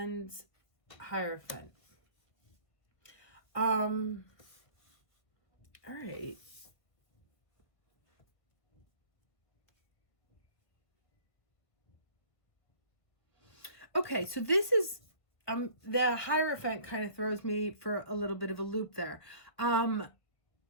Hierophant. All right. Okay, so this is the Hierophant kind of throws me for a little bit of a loop there. But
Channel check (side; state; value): right; late; 1.5 ms